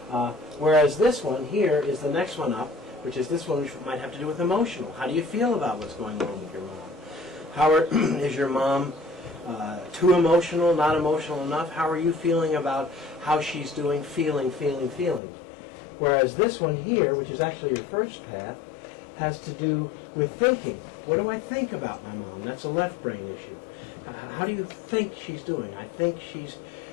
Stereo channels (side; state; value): right; drops out; at 15.2 s